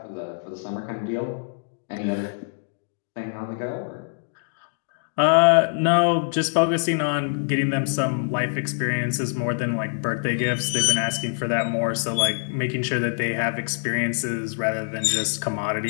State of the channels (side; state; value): right; silent; digital silence